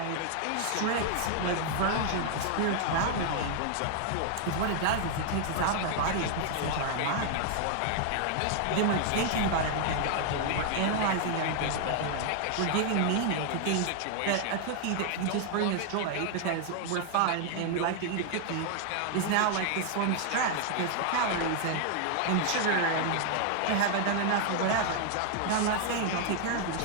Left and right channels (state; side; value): different; both; correlation 0.00